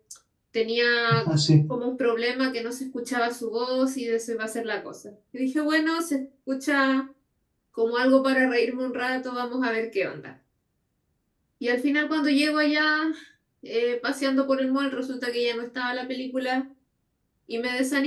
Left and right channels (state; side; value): identical; both; correlation 1.00